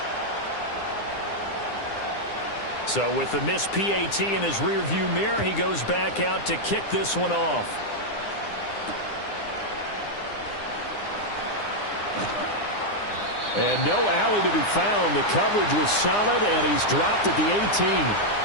So with the missed PAT in his rearview mirror, he goes back out to kick this one off. And no alley to be found. The coverage was solid, and he's dropped at the 18.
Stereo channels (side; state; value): right; late; 9.8 ms